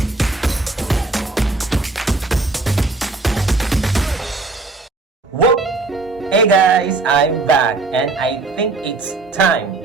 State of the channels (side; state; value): left; quieter; 3.6 dB